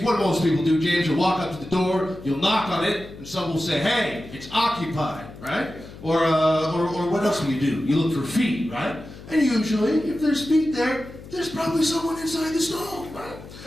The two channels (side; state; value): left; noise; hum, 16 dB below the sound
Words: what do most people do, James? You'll walk up to the door, you'll knock on it, and someone will say, hey, it's occupied, right? Or what else do? You look for feet, right? And usually, if there's feet there, there's probably someone inside the stall, right?